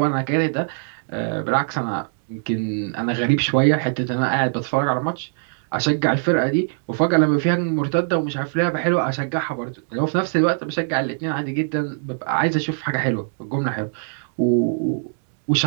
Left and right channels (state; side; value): silent; left; digital silence